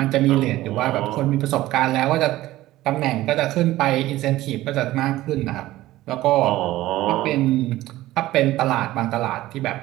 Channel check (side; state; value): left; quieter; 16.2 dB